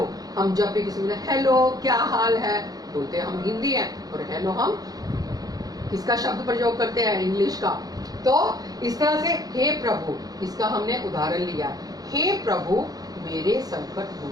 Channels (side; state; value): left; late; 0.18 ms